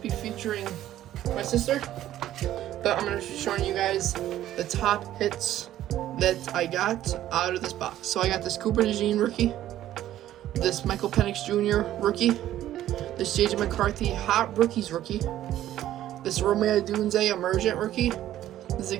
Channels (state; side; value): quieter; left; 12.9 dB